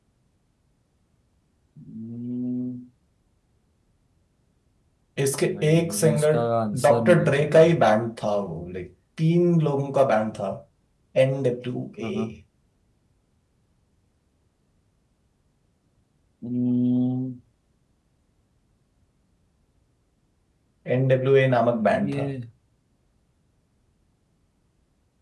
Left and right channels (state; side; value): identical; both; correlation 1.00